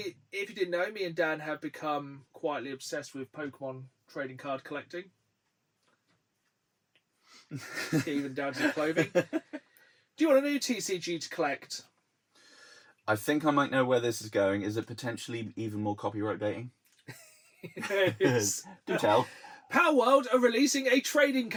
if you didn't know, me and Dan have become quietly obsessed with Pokemon trading card collecting. Even down to the clothing. Do you want a new TCG to collect? I think I might know where this is going. Is it potentially even more copyright baiting? Yes. Do tell. Power World are releasing a trading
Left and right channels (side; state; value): both; identical; correlation 1.00